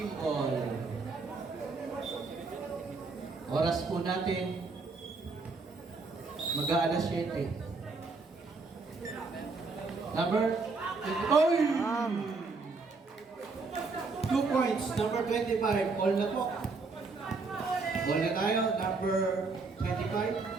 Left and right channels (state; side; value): quieter; left; 4.0 dB